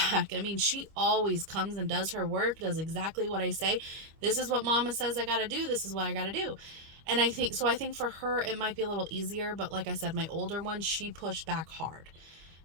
I mean, she always comes and does her work, does exactly what I say. This is what mama says I got to do. This is what I got to do. And I think for her, it might be a little easier. But like I said, my older one, she pushed back hard,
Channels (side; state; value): left; late; 25 ms